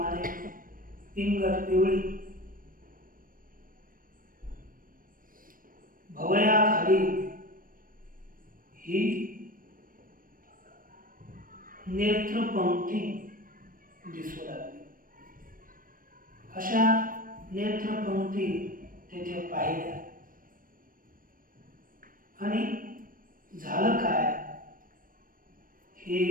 पिंगट पिवळी भवयाखाली ही नेत्रपंक्ती दिसू लागली. अशा नेत्रपंक्ती तेथे पाहिल्या. आणि झालं काय? हे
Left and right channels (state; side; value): late; left; 0.40 ms